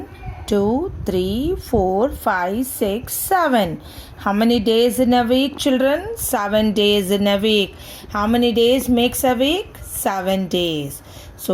2, 3, 4, 5, 6, 7. How many days in a week, children? 7 days in a week. How many days makes a week? 7 days.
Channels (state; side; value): identical; both; correlation 1.00